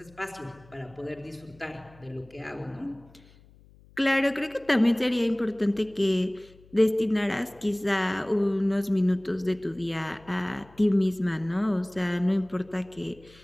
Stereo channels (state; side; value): noise; left; hum, 26 dB below the sound